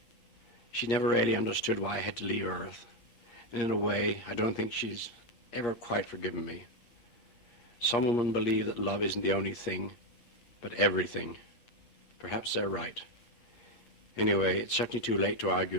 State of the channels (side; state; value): right; late; 8.5 ms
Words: She never really understood why I had to leave Earth. And in a way, I don't think she's ever quite forgiven me. Some women believe that love isn't the only thing, but everything. Perhaps they're right. Anyway, it's certainly too late to